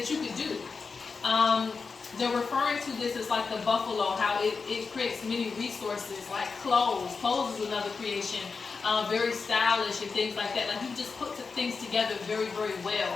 you could do. They're referring to this as like the buffalo, how it creates many resources, like clothes. Clothes is another creation. Very stylish and things like that. Like you just put things together very, very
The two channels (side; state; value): right; quieter; 4.8 dB